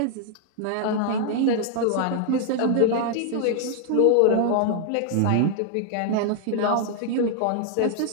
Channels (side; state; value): both; different; correlation 0.00